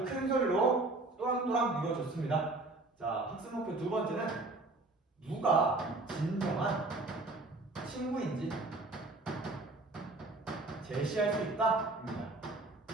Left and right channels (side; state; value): left; quieter; 3.1 dB